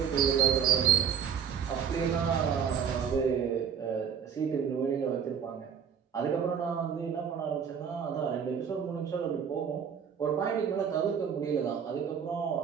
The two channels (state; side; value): quieter; left; 7.5 dB